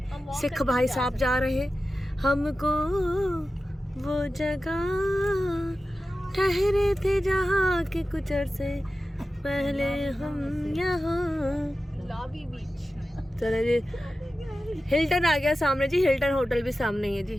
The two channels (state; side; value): normal; both; correlation 0.94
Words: सिख भाई साहब जा रहे हमको वो जगह ठहरे थे जहाँ के कुछ अरसे पहले हम यहाँ। लॉबी बीच। चले जी, हिल्टन आ गया सामने जी, हिल्टन होटल भी सामने ही है जी।